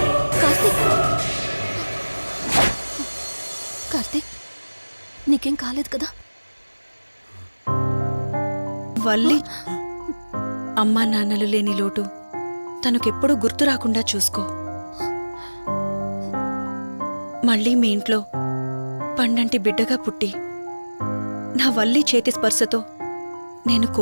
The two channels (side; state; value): both; inverted; correlation -1.00